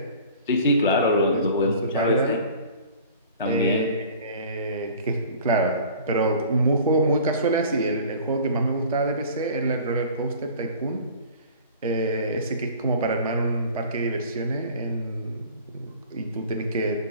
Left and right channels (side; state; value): both; inverted; correlation -0.45